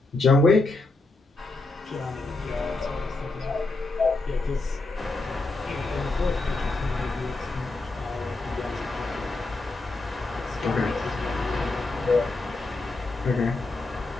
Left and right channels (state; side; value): quieter; right; 3.1 dB